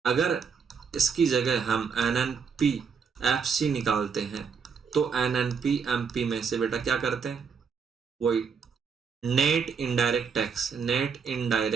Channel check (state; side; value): quieter; left; 6.0 dB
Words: अगर इसकी जगह हम N N P F C निकालते हैं तो N N P M P में से बेटा क्या करते हैं, वही net indirect tax, net